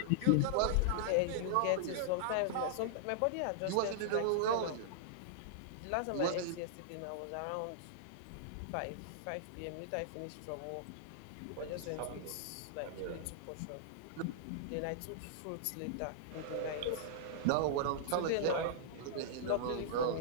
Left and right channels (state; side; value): different; both; correlation -0.01